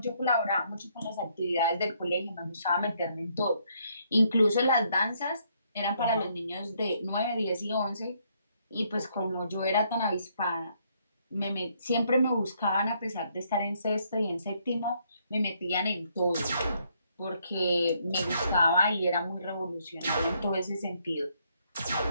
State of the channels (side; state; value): both; inverted; correlation -0.71